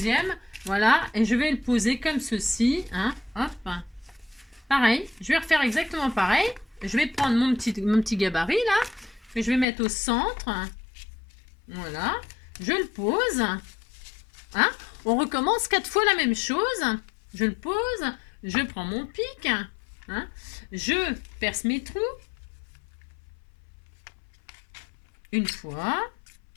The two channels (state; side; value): drops out; right; at 9.7 s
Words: Voilà, et je vais le poser comme ceci. Hein, hop. Pareil, je vais refaire exactement pareil. Je vais prendre mon petit gabarit, là, que je vais mettre au centre. Voilà, je le pose. Hein. On recommence 4 fois la même chose. Je le pose. Je prends mon pic, hein, je perce mes trous, une fois.